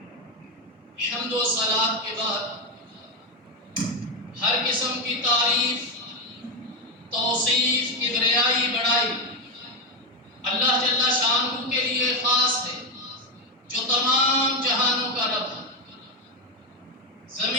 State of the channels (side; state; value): both; normal; correlation 0.10